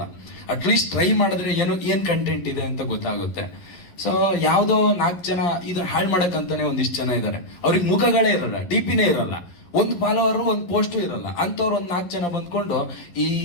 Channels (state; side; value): late; right; 11 ms